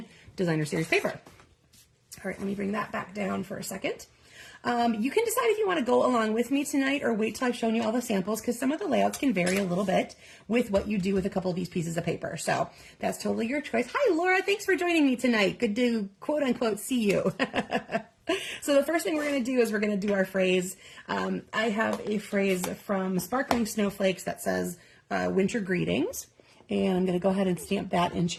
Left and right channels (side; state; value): both; identical; correlation 1.00